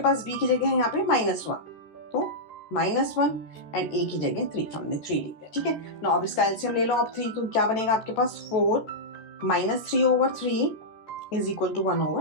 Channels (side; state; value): right; late; 13 ms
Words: पास, b की जगह है यहाँ पे -1, तो -1 एंड a की जगह 3, हमने 3 लिख दिया, ठीक है। ना अब इसका एलसीएम ले लो आप 3, तो क्या बनेगा आपके पास, 4 - 3/3 is equal to